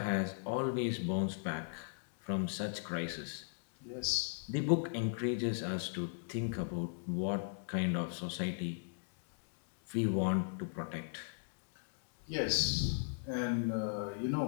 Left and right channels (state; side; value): silent; right; digital silence